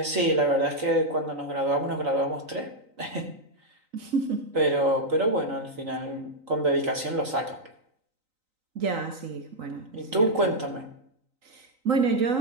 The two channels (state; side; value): late; left; 3.9 ms